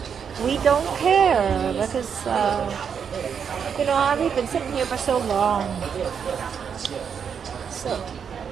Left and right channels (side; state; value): left; quieter; 7.1 dB